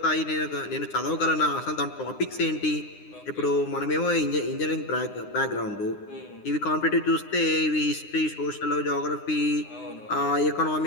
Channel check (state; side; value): late; right; 9.8 ms